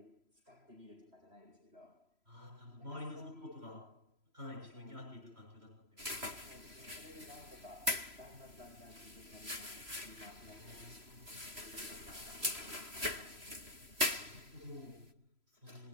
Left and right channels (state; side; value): late; left; 3.0 ms